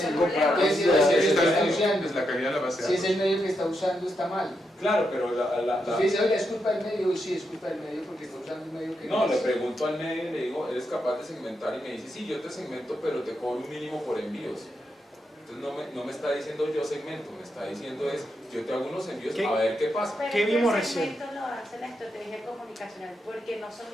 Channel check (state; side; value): normal; both; correlation 0.83